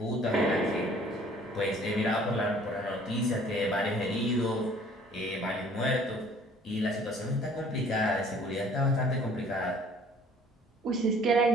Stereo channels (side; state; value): both; normal; correlation 0.54